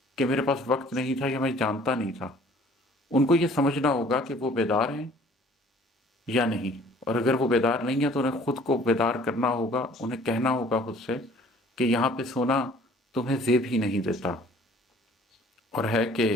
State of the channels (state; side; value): normal; both; correlation 0.54